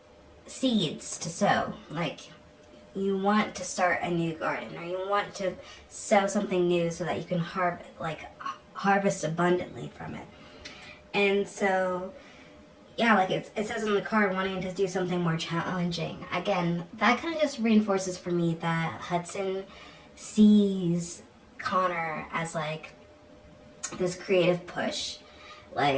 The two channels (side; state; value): both; identical; correlation 1.00